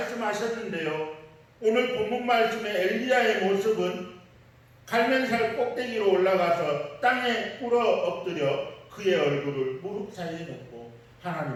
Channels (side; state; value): both; identical; correlation 1.00